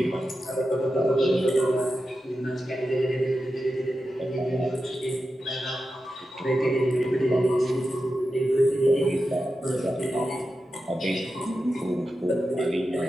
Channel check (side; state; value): both; normal; correlation 0.91